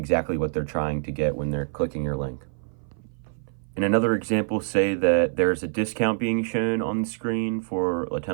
what they're trying to get when they're clicking your link. In another example, say that there's a discount being shown on the screen for a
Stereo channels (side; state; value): left; silent; 57 dB below the other